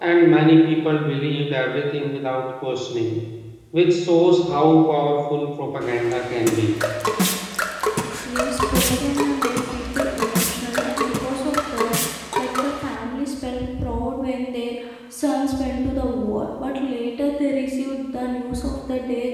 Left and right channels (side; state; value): both; identical; correlation 1.00